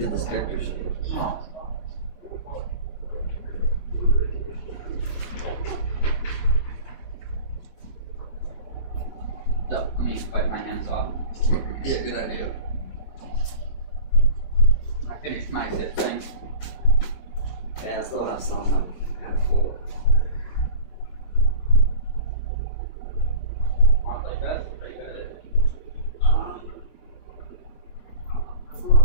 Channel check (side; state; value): right; late; 23 ms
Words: this character sheet. So, let me wipe my hands off. Yeah, good idea. I finished my zip thing. Yeah, I still have some. I'm kind of full. Want like that? Pretty good at it. Let's go on